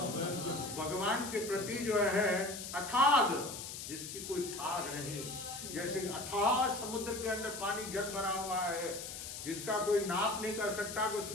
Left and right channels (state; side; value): noise; left; hiss, 8 dB below the sound